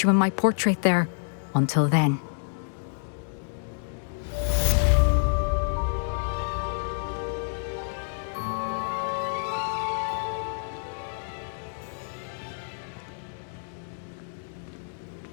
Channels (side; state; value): right; silent; digital silence